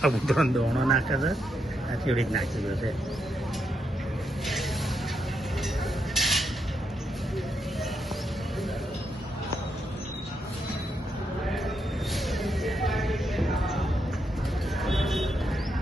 દોણો નાખે છે. આ ચીડી જ નાખી ગયો છે.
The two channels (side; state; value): both; normal; correlation 0.81